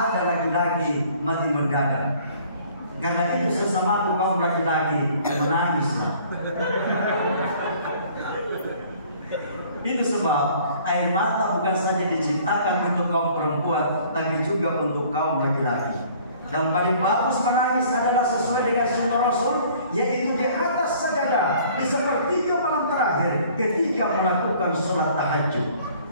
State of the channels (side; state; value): both; inverted; correlation -0.54